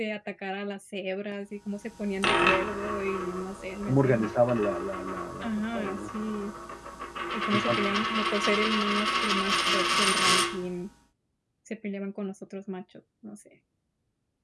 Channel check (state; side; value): identical; both; correlation 1.00